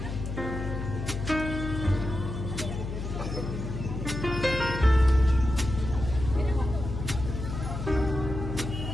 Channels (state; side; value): noise; left; hum, 6 dB below the sound